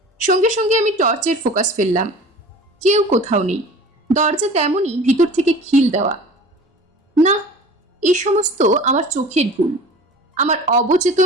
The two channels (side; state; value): both; normal; correlation 0.41